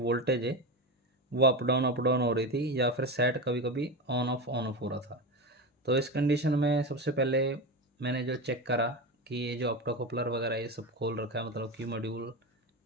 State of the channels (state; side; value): normal; both; correlation 0.20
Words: है वो अप डाउन हो रही थी, या फिर सेट कभी कभी ऑन ऑफ हो रहा था। तो इस कंडीशन में सबसे पहले मैंने जो चेक करा कि ये जो ऑप्टोकपलर वगैरह ये सब खोल रखा है, मतलब कि मॉड्यूल